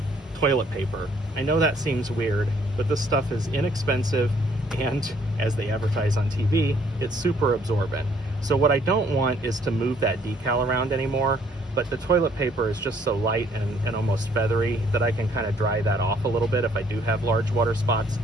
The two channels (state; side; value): normal; both; correlation 0.64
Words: toilet paper. I know that seems weird, but this stuff is inexpensive, and as they advertise on TV, it's super absorbent. So what I don't want is to move that decal around anymore, but the toilet paper is just so light and almost feathery that I can kind of dry that off a little bit if I do have large water spots,